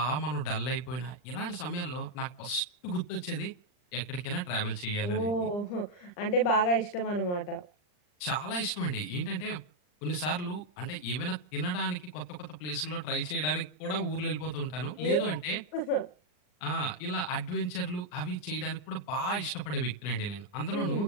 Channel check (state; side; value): late; right; 39 ms